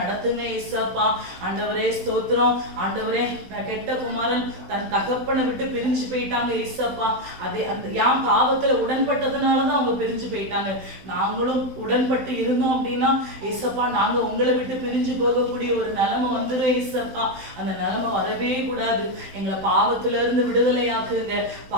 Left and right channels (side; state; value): left; late; 16 ms